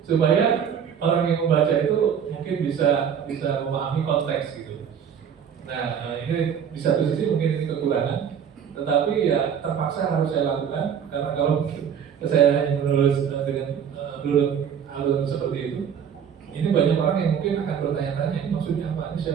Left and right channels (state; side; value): quieter; left; 8.0 dB